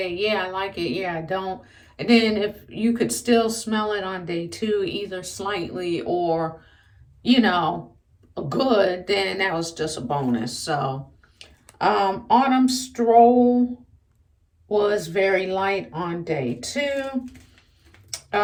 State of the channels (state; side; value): identical; both; correlation 1.00